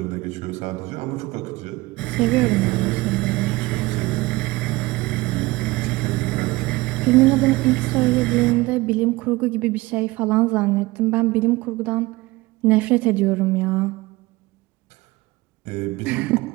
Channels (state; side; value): quieter; left; 20.9 dB